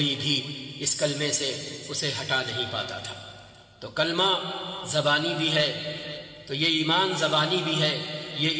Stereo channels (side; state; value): both; identical; correlation 1.00